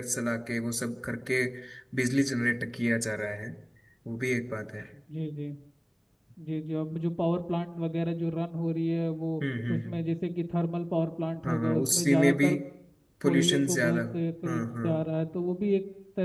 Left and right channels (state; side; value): identical; both; correlation 1.00